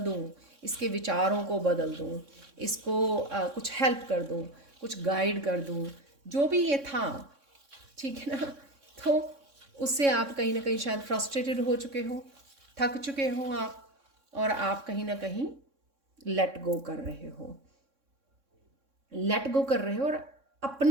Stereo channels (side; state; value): left; late; 3.6 ms